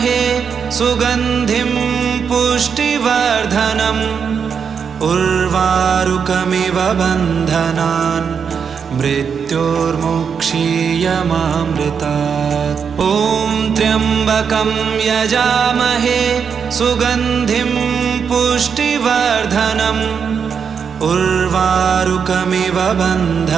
सुगन्धिं पुष्टिवर्धनम् उर्वारुकमिव बन्धनान् मृत्योर्मुक्षीयमामृतात्। ॐ त्र्यम्बकं यजामहे सुगन्धिं पुष्टिवर्धनम् उर्वारुकमिव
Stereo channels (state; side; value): quieter; left; 6.6 dB